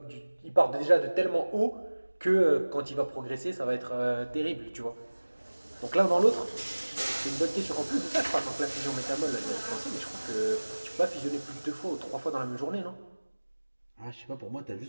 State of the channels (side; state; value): both; inverted; correlation -1.00